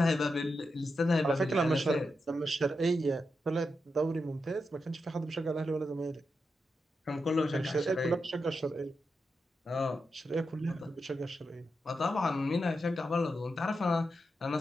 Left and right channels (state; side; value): normal; both; correlation 0.87